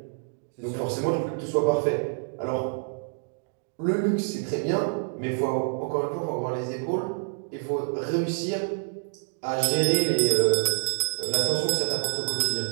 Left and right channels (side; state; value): left; silent; digital silence